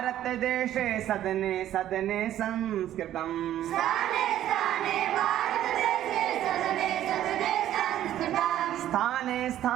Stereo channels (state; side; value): quieter; left; 12.2 dB